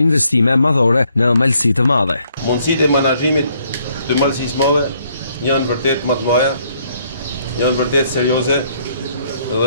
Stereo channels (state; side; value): inverted; both; correlation -0.69